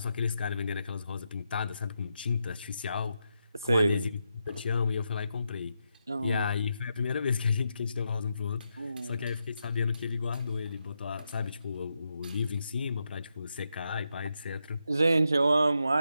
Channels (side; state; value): both; inverted; correlation -0.84